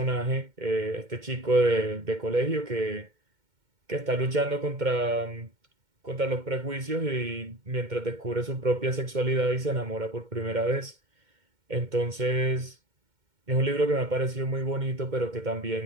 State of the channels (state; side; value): late; left; 2.1 ms